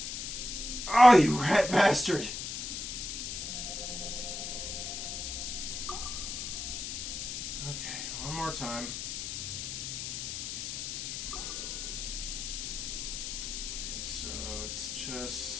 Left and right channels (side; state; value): left; noise; hiss, 5 dB below the sound